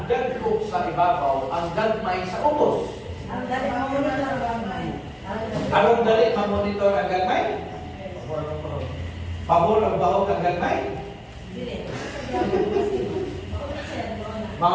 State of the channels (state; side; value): identical; both; correlation 1.00